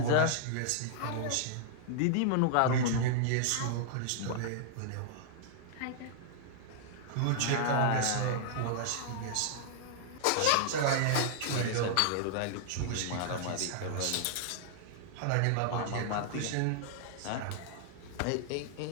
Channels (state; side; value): different; both; correlation -0.01